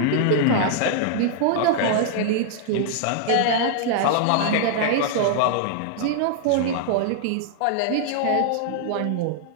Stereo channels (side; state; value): both; different; correlation 0.00